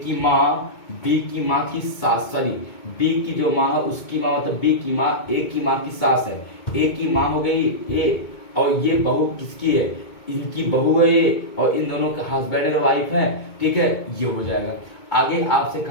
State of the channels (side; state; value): right; late; 2.2 ms